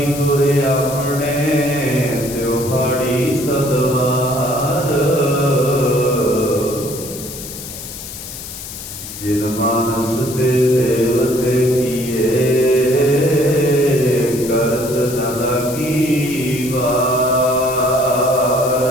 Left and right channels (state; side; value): noise; left; hiss, 11 dB below the sound